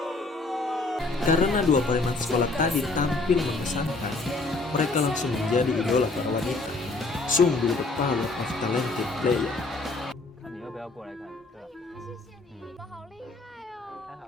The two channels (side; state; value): right; quieter; 3.4 dB